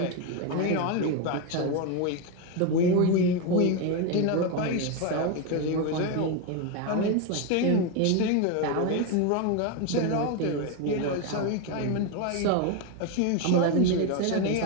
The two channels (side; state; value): both; different; correlation 0.02